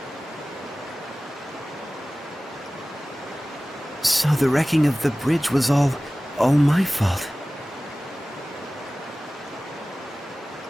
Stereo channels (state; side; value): normal; both; correlation 0.97